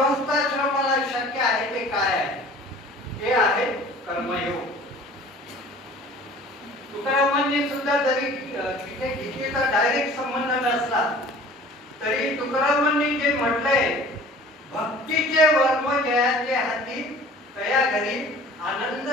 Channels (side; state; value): both; normal; correlation 0.47